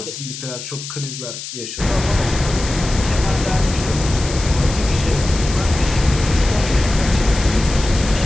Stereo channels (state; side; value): noise; left; hiss, 10 dB below the sound